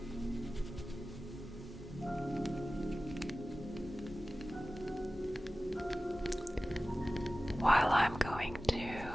While I'm going to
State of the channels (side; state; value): both; normal; correlation 0.96